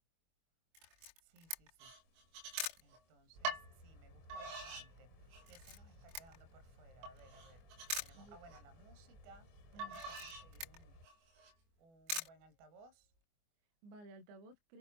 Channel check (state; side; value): late; left; 24 ms